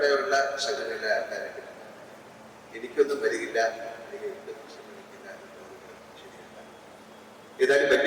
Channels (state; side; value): identical; both; correlation 1.00